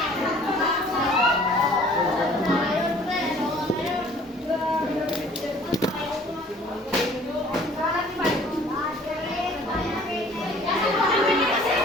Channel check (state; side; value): normal; both; correlation 0.53